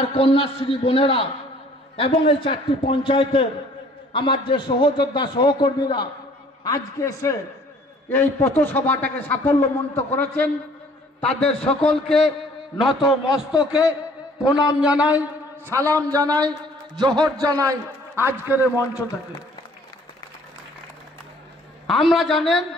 কন্যাশ্রী বোনেরা এবং এই 4টি পঞ্চায়েতের আমার যে সহযোদ্ধা সহকর্মীরা আজকে এসে এই পথসভাটাকে সাফল্যমণ্ডিত করেছেন, তাদের সকলকে নত মস্তকে প্রণাম জানাই, সালাম জানাই, জোহর জানাই আজকের এই মঞ্চ থেকে।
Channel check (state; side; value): normal; both; correlation 0.56